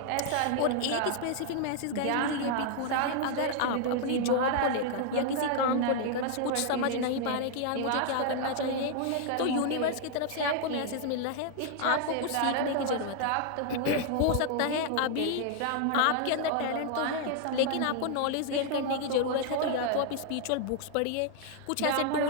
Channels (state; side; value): different; both; correlation 0.00